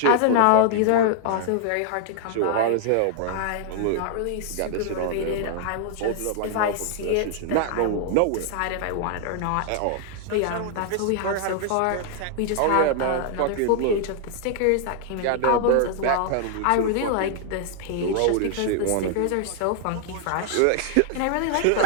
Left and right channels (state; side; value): different; both; correlation 0.00